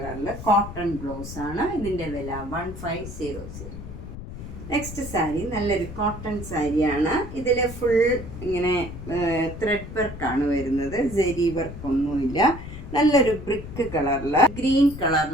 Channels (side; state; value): left; noise; rumble, 11 dB below the sound